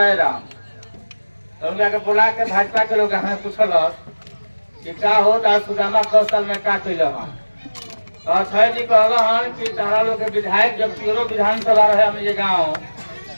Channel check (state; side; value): inverted; both; correlation -1.00